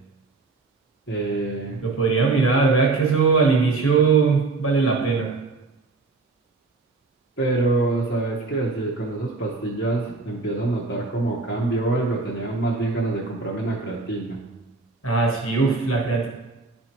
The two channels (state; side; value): quieter; left; 3.8 dB